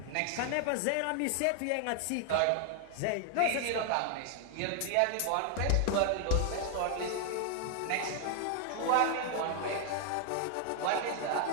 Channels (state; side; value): different; both; correlation 0.00